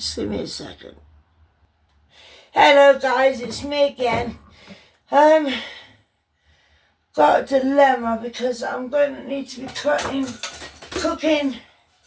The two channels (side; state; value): both; identical; correlation 1.00